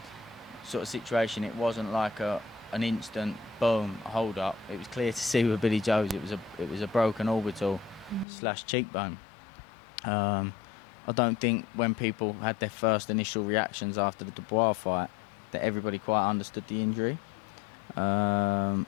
of situation, it wasn't like an instant boom hold up. It was clear to see with Billy Joe's it was a broken orbital / cheekbone. I don't think when people had their first initial reactions after the Dubois fight that everybody quite understood the injury.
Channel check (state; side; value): drops out; right; at 8.2 s